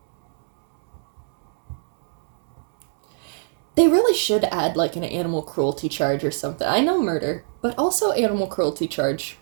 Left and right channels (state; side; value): silent; left; digital silence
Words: They really should add, an animal cruelty charge or something. I know murder, but also animal cruelty charge.